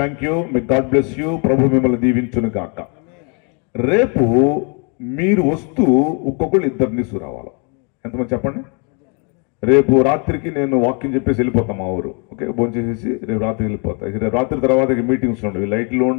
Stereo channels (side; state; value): right; quieter; 36.2 dB